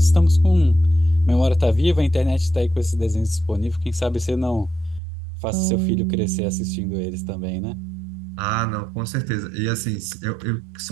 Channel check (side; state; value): left; drops out; at 5.0 s